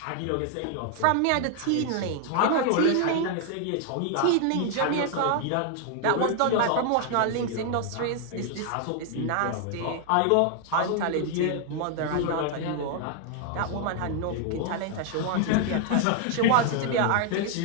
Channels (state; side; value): different; both; correlation 0.00